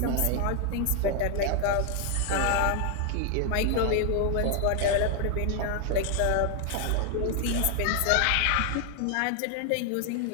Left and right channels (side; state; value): both; different; correlation 0.00